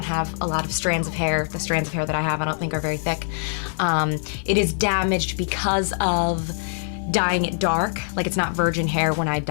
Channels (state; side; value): silent; right; 63 dB below the other